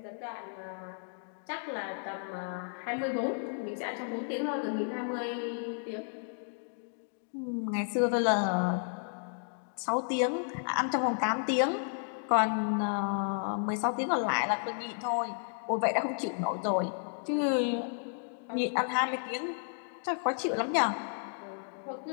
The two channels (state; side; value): silent; right; digital silence